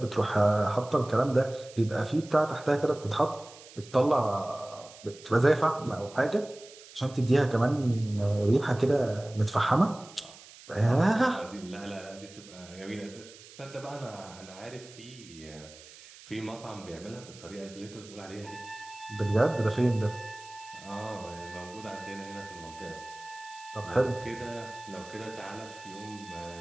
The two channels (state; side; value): noise; right; hiss, 19 dB below the sound